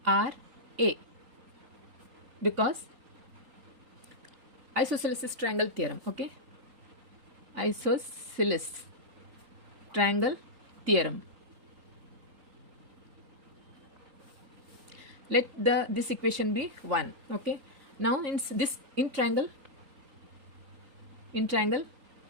because isosceles triangle theorem. Okay, isosceles triangle theorem. Let this equation be 1. Okay. Now in triangle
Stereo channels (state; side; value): late; left; 3.8 ms